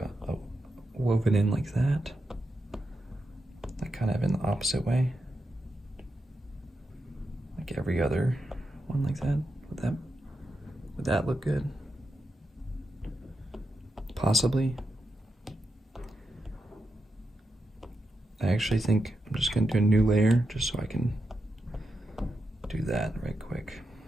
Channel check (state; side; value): normal; both; correlation 0.86